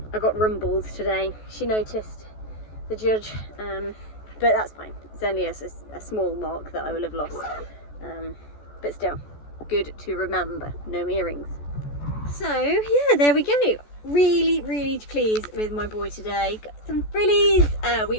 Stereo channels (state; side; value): late; right; 14 ms